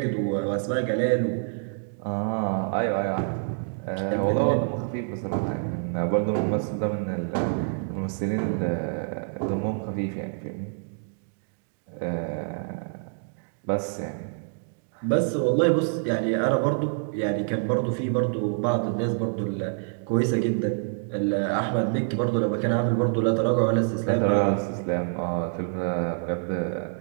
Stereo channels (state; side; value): silent; left; digital silence